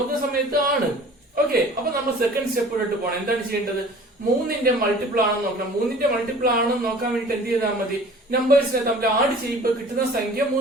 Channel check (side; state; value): both; normal; correlation 0.46